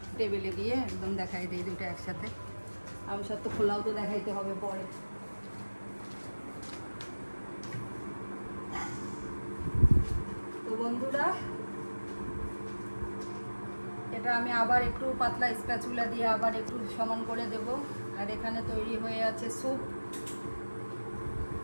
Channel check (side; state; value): both; inverted; correlation -1.00